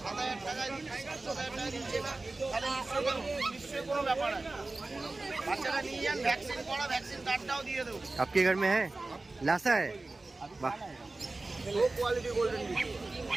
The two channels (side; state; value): left; quieter; 3.2 dB